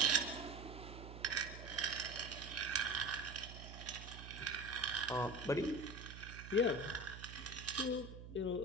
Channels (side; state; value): right; noise; hum, 12 dB below the sound